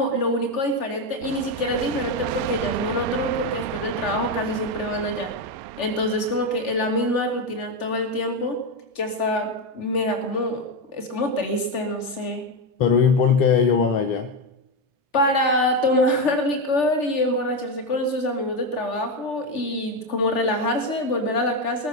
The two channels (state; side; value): late; right; 3.4 ms